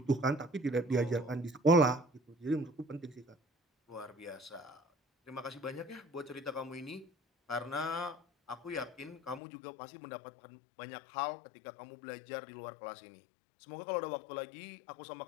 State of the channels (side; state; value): right; drops out; at 9.4 s